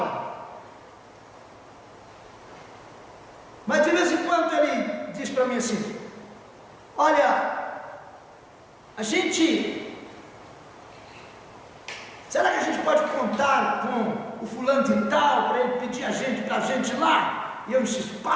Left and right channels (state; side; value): identical; both; correlation 1.00